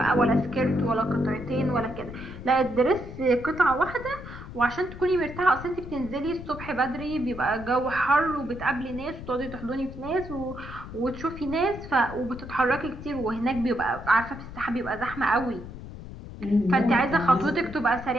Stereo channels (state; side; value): noise; left; rumble, 12 dB below the sound